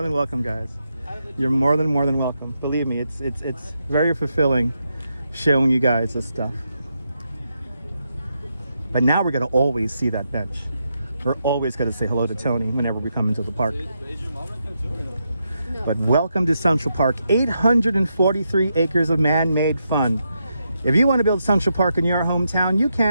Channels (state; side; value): inverted; both; correlation -0.83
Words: than welcome, guys. You're more than welcome. Believe me, it's very fulfilling showing you guys this stuff. But now we're gonna always see that bench. We're always gonna say hello to Tony whenever we come into the park. But welcome to Central Park. 843 acres of man-made fun. If you want to build Central Park in your hometown, you